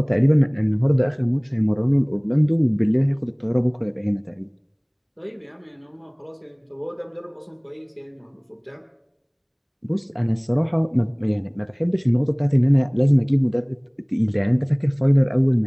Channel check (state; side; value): identical; both; correlation 1.00